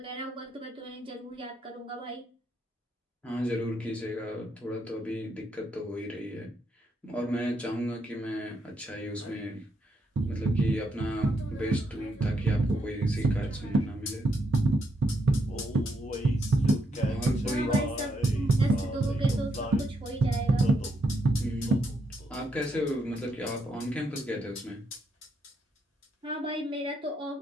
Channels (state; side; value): normal; both; correlation 0.78